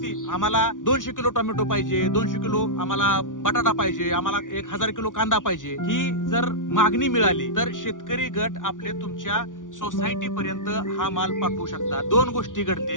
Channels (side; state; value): right; late; 0.88 ms